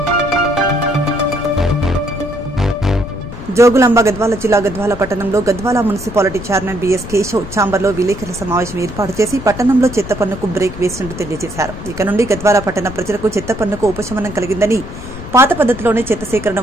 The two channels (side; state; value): left; noise; rumble, 11 dB below the sound